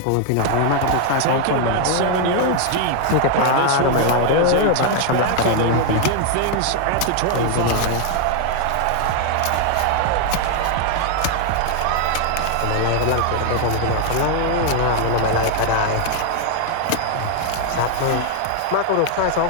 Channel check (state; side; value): different; both; correlation 0.00